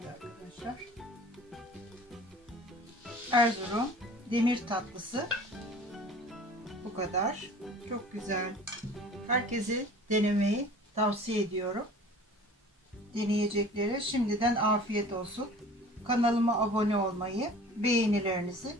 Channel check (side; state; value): both; normal; correlation 0.44